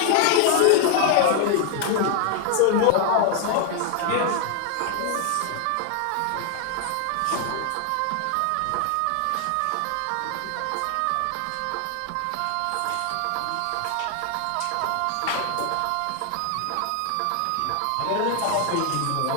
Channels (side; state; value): both; different; correlation 0.00